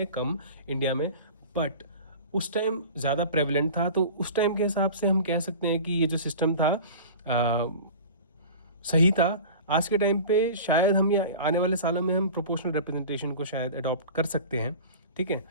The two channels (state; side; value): inverted; both; correlation -0.37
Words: कम इंडिया में, बट उस टाइम ज़्यादा प्रेवलेंट था. तो उस टाइम के हिसाब से हम कह सकते हैं कि ये जो सिस्टम था सही था. आज के टाइम पे शायद हम या आने वाले सालों में हम प्रोपोर्शनल रिप्रेजेंटेशन को शायद अडॉप्ट कर सकते हैं. ठीक है,